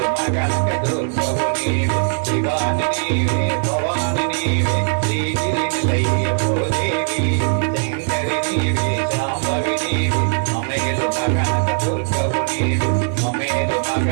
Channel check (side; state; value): left; silent; digital silence